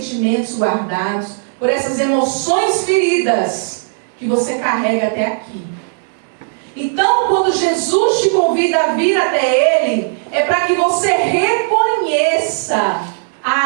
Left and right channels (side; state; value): left; silent; digital silence